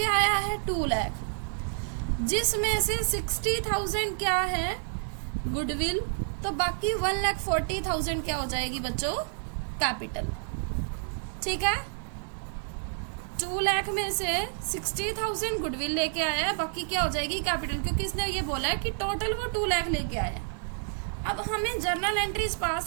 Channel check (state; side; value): silent; left; 58 dB below the other